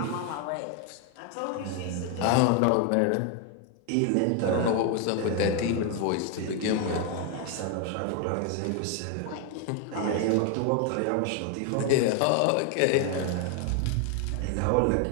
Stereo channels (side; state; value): both; different; correlation 0.01